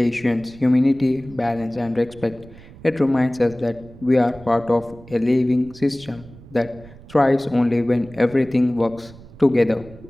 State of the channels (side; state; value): right; noise; rumble, 20 dB below the sound